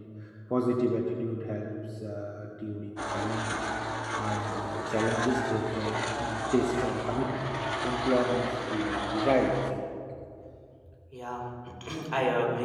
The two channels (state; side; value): identical; both; correlation 1.00